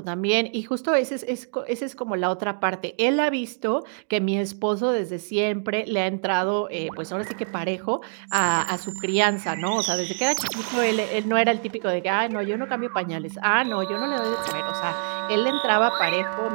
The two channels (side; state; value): left; silent; 62 dB below the other